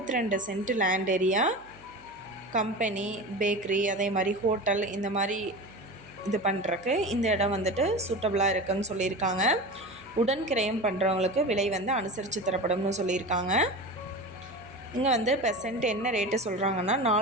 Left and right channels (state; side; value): noise; right; hum, 27 dB below the sound